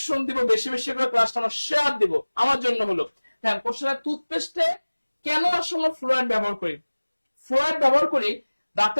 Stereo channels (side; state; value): both; inverted; correlation -1.00